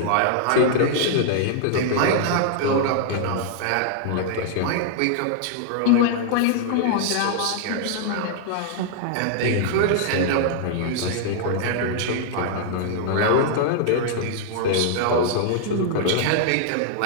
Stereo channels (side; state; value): both; different; correlation -0.01